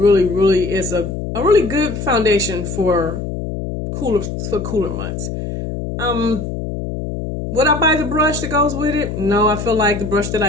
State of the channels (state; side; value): noise; left; hum, 6 dB below the sound